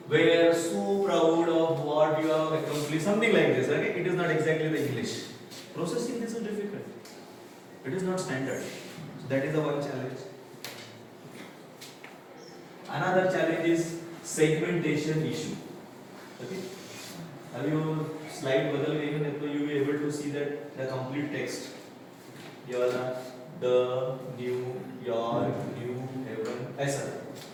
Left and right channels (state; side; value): identical; both; correlation 1.00